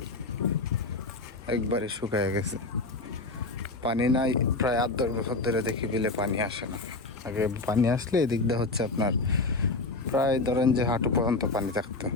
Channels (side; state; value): right; quieter; 3.4 dB